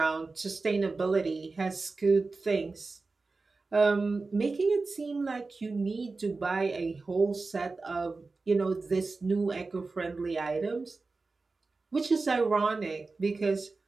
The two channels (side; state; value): left; quieter; 3.8 dB